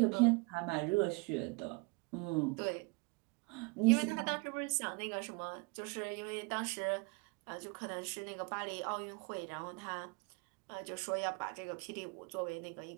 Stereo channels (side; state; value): left; quieter; 29.7 dB